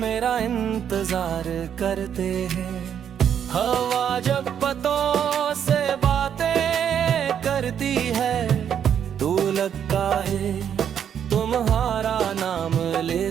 इंतजार करते हैं। हवा जब पतों से बातें करती है, तू लगता है तुम्हारा नाम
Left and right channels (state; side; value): quieter; left; 8.7 dB